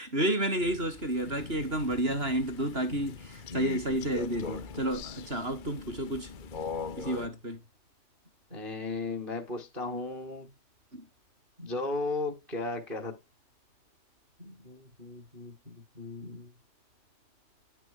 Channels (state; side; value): late; left; 2.9 ms